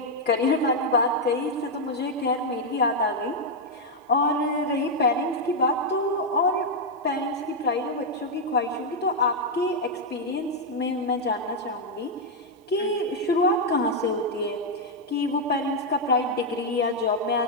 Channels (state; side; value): normal; both; correlation -0.01